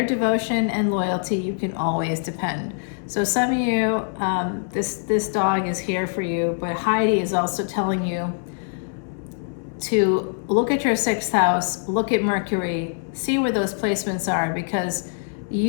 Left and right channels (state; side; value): silent; right; digital silence